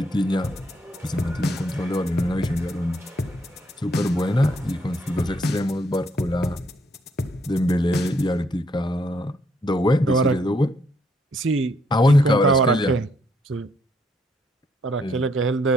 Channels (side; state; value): both; normal; correlation 0.72